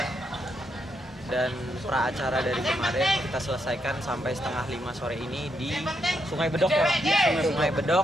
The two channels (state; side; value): normal; both; correlation 0.79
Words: dan pra acara dari kemarin kita selesaikan sampai setengah 5 sore ini di Sungai Bedok ya, Sungai Bedok,